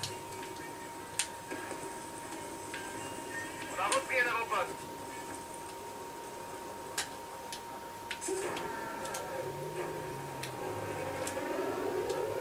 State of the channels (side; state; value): both; identical; correlation 1.00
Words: On a repris un avant-poste.